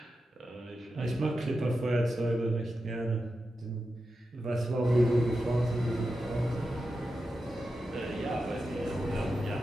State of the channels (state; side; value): normal; both; correlation 0.90